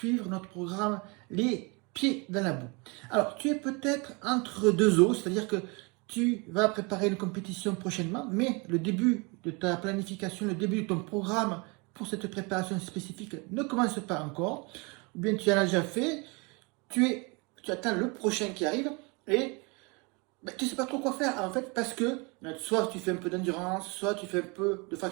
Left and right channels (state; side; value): quieter; left; 29.6 dB